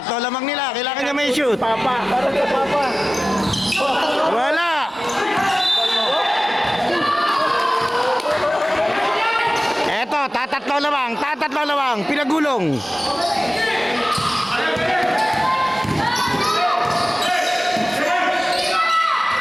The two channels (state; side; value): normal; both; correlation 0.97